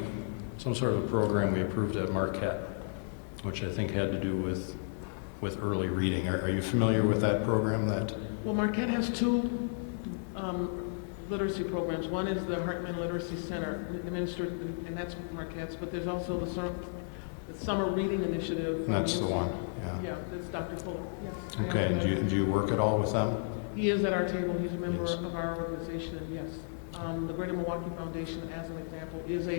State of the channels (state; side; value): silent; right; digital silence